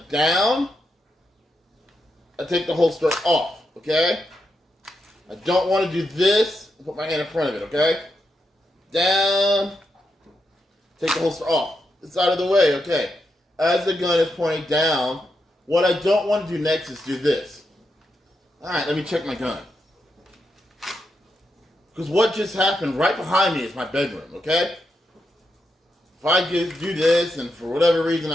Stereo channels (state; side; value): normal; both; correlation 0.84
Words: down, I take the holster off, okay? I don't want to do this and put my hand in front of it, okay? Down, take the holster off. It's out of the way, okay? As the gun is pointing down, what I don't want to do next is do this. Alright, let me check my gun. Because what just happened right behind me is my bedroom, okay? If I do this, and for whatever reason,